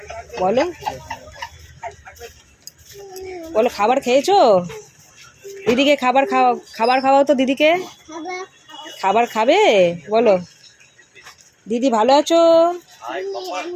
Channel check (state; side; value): identical; both; correlation 1.00